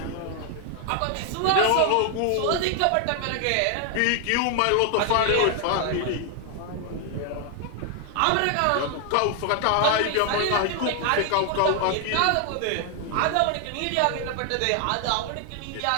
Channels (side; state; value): both; different; correlation 0.00